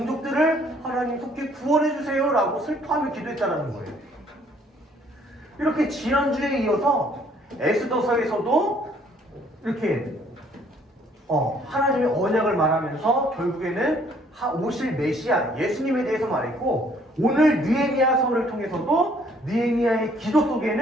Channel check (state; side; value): normal; both; correlation 0.62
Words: 하나님 속히 구원해 주세요 라고 슬퍼하며 기도했다는 거예요. 이렇게 지난주에 이어서 에스더서에서도 이렇게 하나님의 언약을 말하면서 결국에는 오실 메시아 예수님에 대해서 말했고, 오늘 느헤미야서를 통해서도 느헤미야의 기도